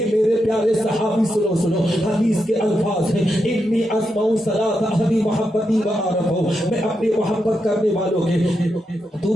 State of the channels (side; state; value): both; normal; correlation 0.85